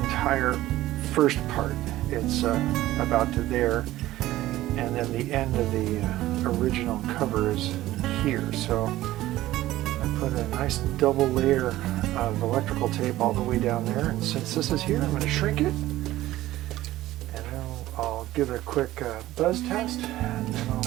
first part. It's about to there, and then the end of the original cover is here. So I put a nice double layer of electrical tape all the way down there, and since this is here, I'm going to shrink it, and then I'll give it a quick buzz test, and then I'll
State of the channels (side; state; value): left; quieter; 15.6 dB